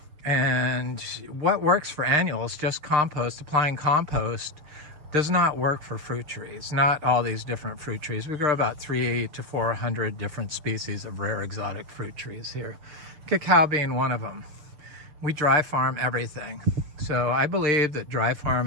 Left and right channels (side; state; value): left; late; 6.7 ms